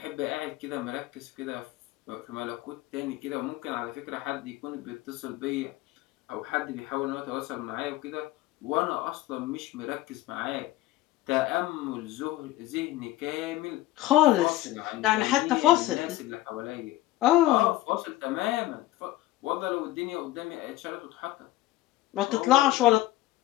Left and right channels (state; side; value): quieter; right; 16.1 dB